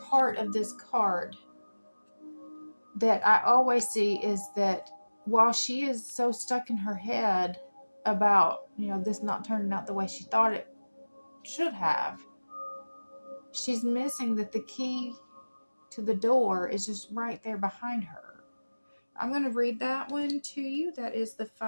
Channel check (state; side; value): inverted; both; correlation -1.00